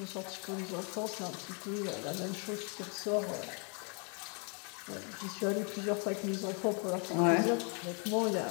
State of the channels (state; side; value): quieter; right; 37.0 dB